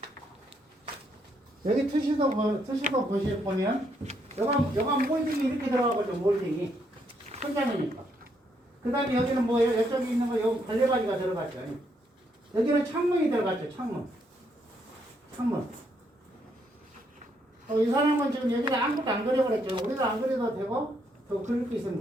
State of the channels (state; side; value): normal; both; correlation 0.74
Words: 여기 투시도 보면 여간 몰딩이 이렇게 들어가거든요. 몰딩이 천장이니까. 그 다음에 여기는 뭐예요? 이쪽에 있는 거 여기 갈래바지가 들어갔죠. 여기는 창문이 들어갔죠. 창문. 이 사람은 지금 여기다 아무것도 안 그려버렸죠. 우리도 안 그려도 되고 더 그릴 게